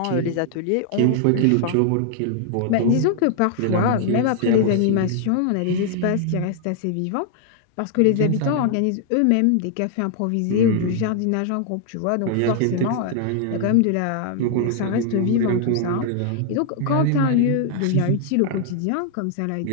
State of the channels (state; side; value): different; both; correlation 0.00